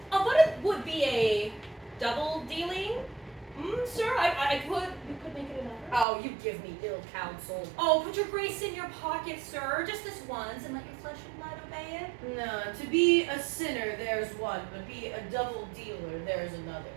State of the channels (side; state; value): left; drops out; at 6.1 s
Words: But it would be a double dealing, sir. We could make it another. Oh, you give me ill counsel. Oh, put your grace in your pocket, sir, just this once, and let your flesh and blood obey it. No, to be a sinner, there's one, but be a double dealer, there's another.